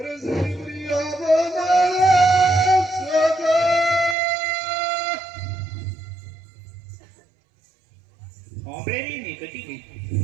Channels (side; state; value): left; drops out; at 4.2 s